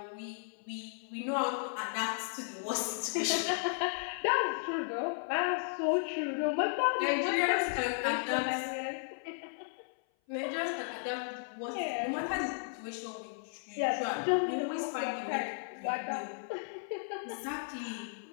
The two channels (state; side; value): silent; right; 55 dB below the other